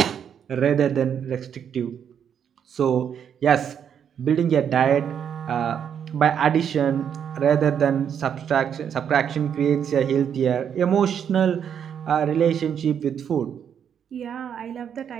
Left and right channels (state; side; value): quieter; left; 8.3 dB